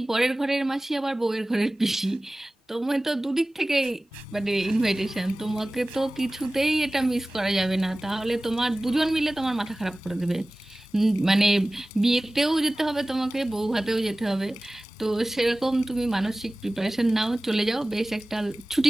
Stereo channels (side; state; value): both; normal; correlation 0.98